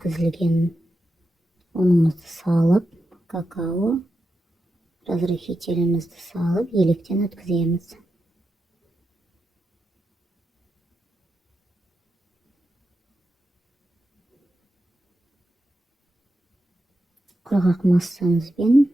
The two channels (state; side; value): normal; both; correlation 0.88